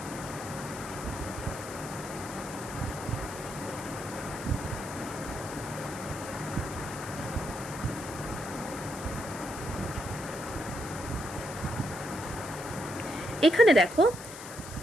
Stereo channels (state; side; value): noise; left; hiss, 13 dB below the sound